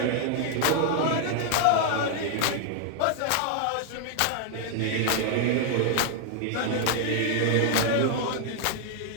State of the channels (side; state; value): both; different; correlation 0.00